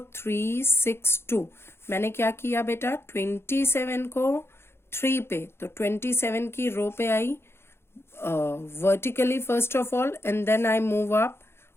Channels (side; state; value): right; late; 0.12 ms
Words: मैंने क्या किया बेटा, 27 को 3 पे, तो 27 की रो पे I vertically first of all, and then I move up